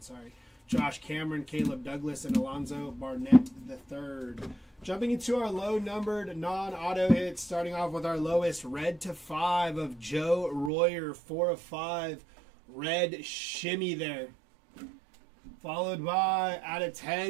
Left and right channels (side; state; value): left; drops out; at 10.7 s